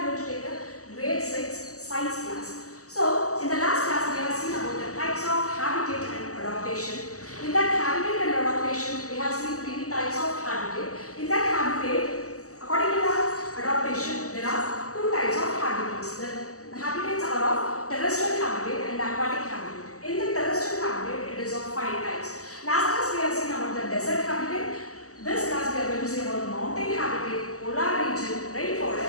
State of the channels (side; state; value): right; late; 0.66 ms